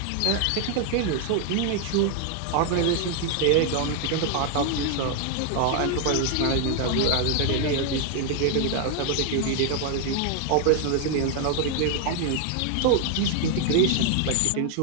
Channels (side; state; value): both; different; correlation 0.00